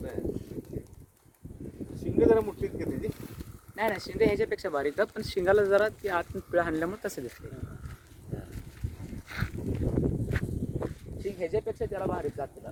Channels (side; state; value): both; identical; correlation 1.00